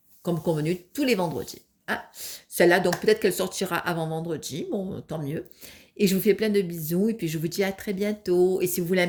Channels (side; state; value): both; identical; correlation 1.00